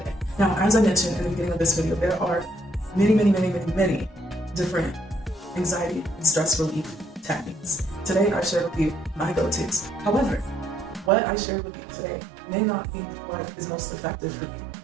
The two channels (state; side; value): drops out; left; at 11.1 s